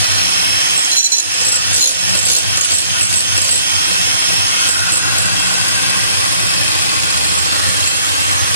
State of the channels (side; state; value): both; inverted; correlation -0.61